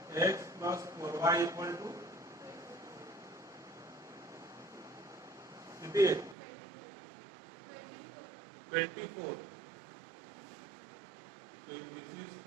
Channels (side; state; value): left; drops out; at 6.4 s